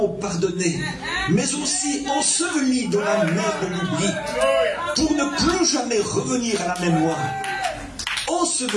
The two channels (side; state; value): both; identical; correlation 1.00